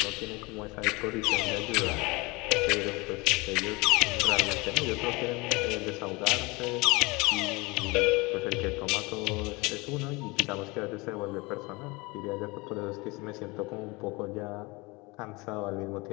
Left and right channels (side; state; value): right; quieter; 25.1 dB